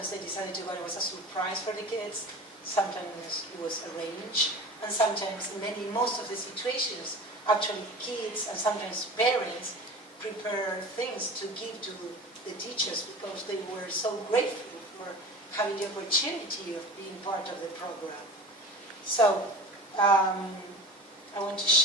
they decided to go, it was a surprise for the kids. Sometimes it was arranged. And sometimes, most of the situations, actually kids and sometimes parents prepare things to give to the teachers because they were so grateful for having the opportunity of being part of the program. So, I want to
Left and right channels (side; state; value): both; normal; correlation 0.36